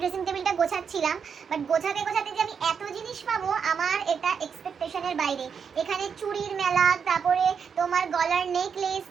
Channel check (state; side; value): quieter; left; 6.6 dB